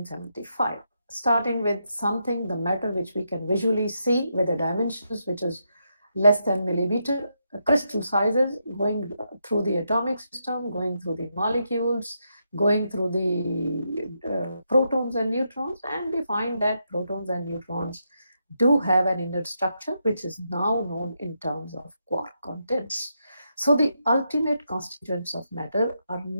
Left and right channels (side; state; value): both; inverted; correlation -0.82